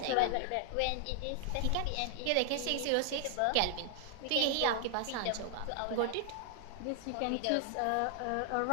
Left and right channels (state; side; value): different; both; correlation 0.00